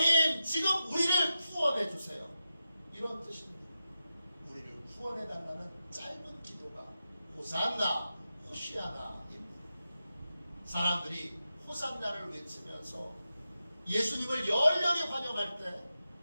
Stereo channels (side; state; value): both; inverted; correlation -0.90